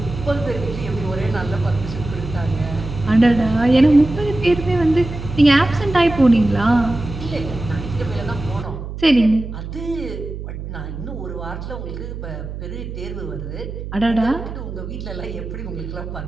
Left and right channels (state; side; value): noise; right; hum, 8 dB below the sound